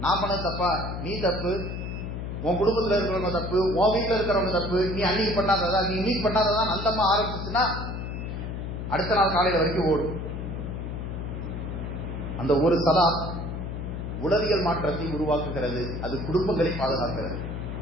நான் பண்ணது தப்பா, நீ தப்பு, உன் குடும்பத்தில் இருக்கிறவங்க தப்பு, உன் வீட்டில் இருக்கிறவங்க தப்பு, நீ அன்னைக்கு பண்ணாததா, நீ இன்னைக்கு பண்ணாததான் அந்தம்மா ஆரம்பிச்சுன்னா அடுத்த நாள் காலையில வரைக்கும் ஓடும். அந்த ஒரு சலாம் உளவியல் மாற்றத்தை உருவாக்குகிறது. அது குடும்பங்களை பாதுகாக்கிறது.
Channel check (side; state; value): left; noise; hum, 5 dB below the sound